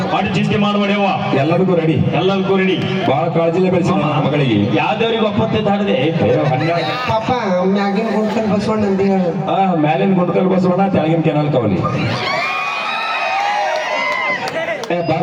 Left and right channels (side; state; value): both; identical; correlation 1.00